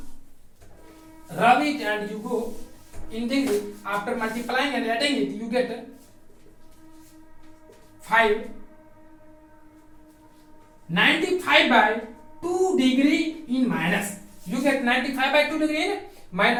rub it and you go in degree. After multiplying and adding it, you get 95 by 2 degree in minus. You get 95 by 2 degree in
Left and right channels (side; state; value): both; identical; correlation 1.00